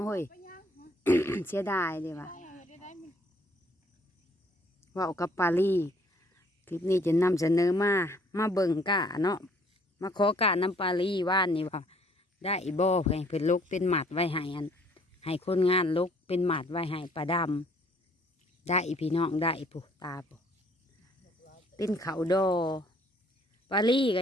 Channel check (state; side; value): normal; both; correlation 0.61